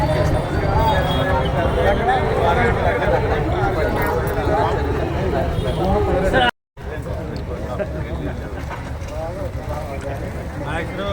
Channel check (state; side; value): identical; both; correlation 1.00